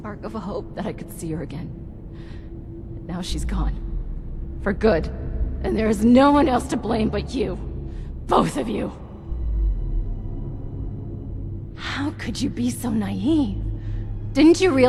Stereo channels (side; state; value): both; identical; correlation 1.00